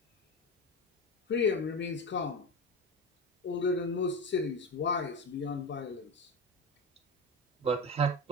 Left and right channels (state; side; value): normal; both; correlation 0.21